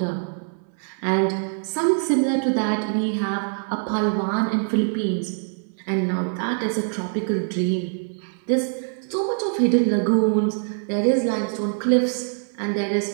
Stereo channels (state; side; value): silent; left; 59 dB below the other